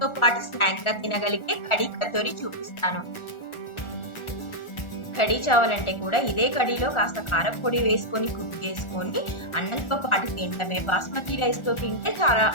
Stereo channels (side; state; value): right; late; 1.4 ms